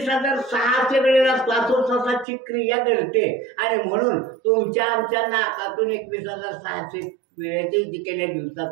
वेळेला श्वासोच्छ्वासाची क्रिया घडते. आणि म्हणून तुमच्या आमच्या नाकातून 21,600 वेळेची जी केल्या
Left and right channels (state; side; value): drops out; left; at 2.2 s